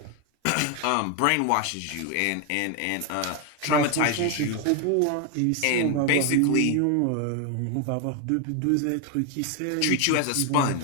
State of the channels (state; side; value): different; both; correlation 0.01